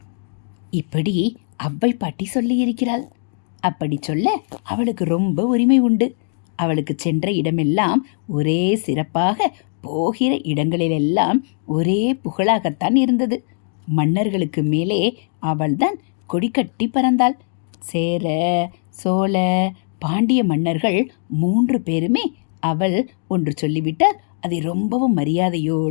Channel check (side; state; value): right; silent; 61 dB below the other